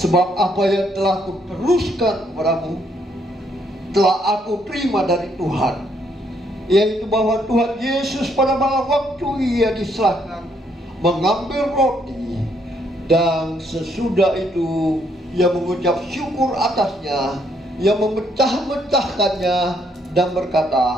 apa yang telah aku teruskan kepadamu, telah aku terima dari Tuhan, yaitu bahwa Tuhan Yesus pada malam waktu ia diserahkan mengambil roti, dan sesudah itu ia mengucap syukur atasnya, ia memecah-mecahkannya dan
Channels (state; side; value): normal; both; correlation 0.71